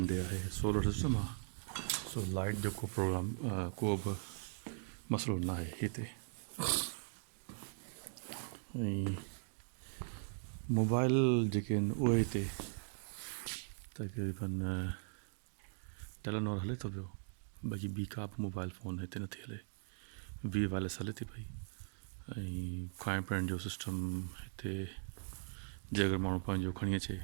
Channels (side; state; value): left; silent; digital silence